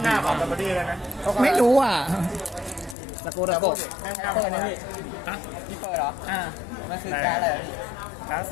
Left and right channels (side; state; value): right; drops out; at 3.0 s